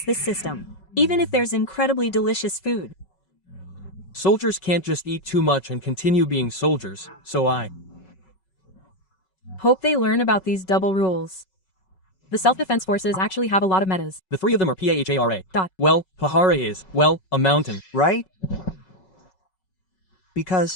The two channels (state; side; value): late; right; 5.3 ms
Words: this system, even if there's incredibly delicious food. soldiers can't just eat too much and continue being soldiers, so I Hope they learn about these double rules. The self-defense forces actually have a lot of metas. The three of them are Pahara. Dot. Well, Pahara is, well, a mountain. right?